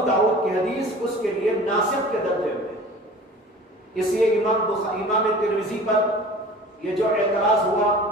داؤد کی حدیث اس کے لیے ناسخ کے درجے میں. اس لیے امام ترمذی پر یہ جو اعتراض ہوا،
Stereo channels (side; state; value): both; normal; correlation 0.42